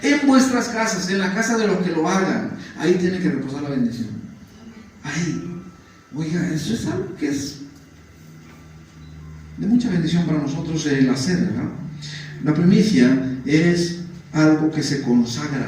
En vuestras casas, en la casa de los que lo hagan. Ahí tiene que reposar la bendición. Ahí. Oiga, eso es algo que es de mucha bendición para nosotros el hacer, ¿verdad? La primicia es algo que se consagra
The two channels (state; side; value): identical; both; correlation 1.00